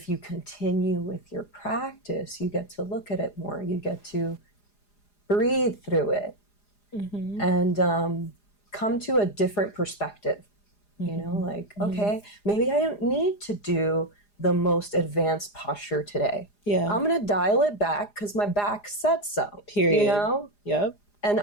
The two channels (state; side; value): late; right; 4.9 ms